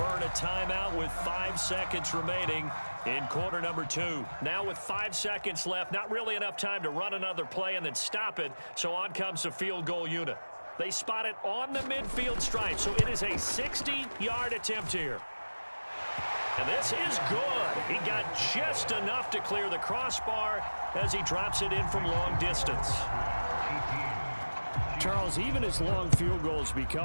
a timeout with 5 seconds remaining in quarter number 2. Now with 5 seconds left, not really enough time to run another play and then stop it, so on comes the field goal unit. They spot it on the midfield stripe, so it is a 60-yard attempt here. And this is good. He got just enough to clear the crossbar as he drops it in from long distance. Charles, even as long field goals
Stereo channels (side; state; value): both; inverted; correlation -1.00